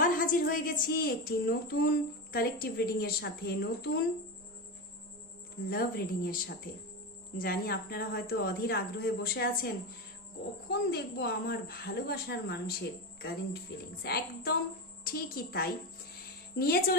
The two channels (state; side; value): normal; both; correlation 0.17